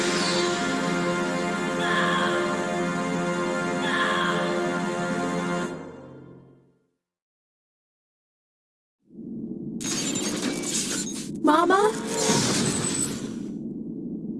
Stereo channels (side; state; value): both; identical; correlation 1.00